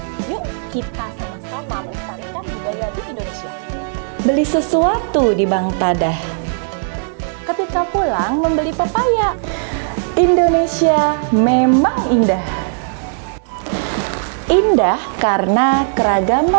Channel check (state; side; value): silent; left; digital silence